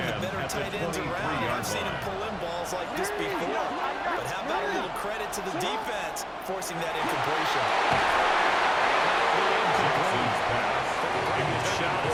the better tight ends around. I've seen him pull in balls like this before. But how about a little credit to the defense forcing that incompletion? Good shot as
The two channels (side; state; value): both; identical; correlation 1.00